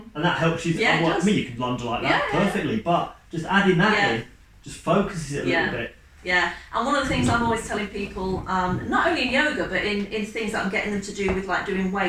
and that helps you. I mean, you can lunge like that perfectly, but just adding that in just focuses it a little bit. Yeah, and one of the things I'm always telling people, not only in yoga, but in things that I'm getting them to do with like doing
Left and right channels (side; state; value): both; identical; correlation 1.00